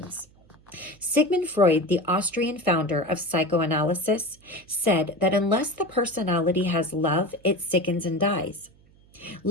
Sigmund Freud, the Austrian founder of psychoanalysis, said that unless the personality has love, it sickens and dies.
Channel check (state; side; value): noise; right; hum, 29 dB below the sound